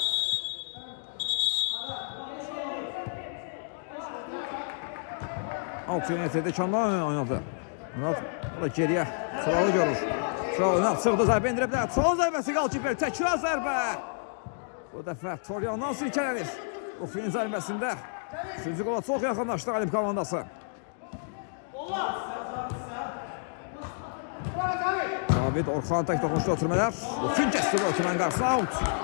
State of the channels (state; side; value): silent; right; digital silence